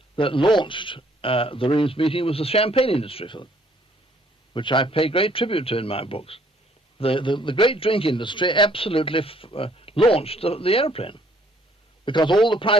that launched the Reims meeting was the champagne industry for them, which I pay great tribute to in my books. The great drink industry absolutely launched the aeroplane, because all the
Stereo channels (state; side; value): normal; both; correlation 0.63